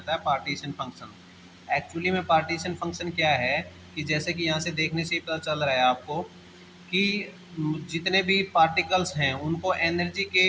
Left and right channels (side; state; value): both; identical; correlation 1.00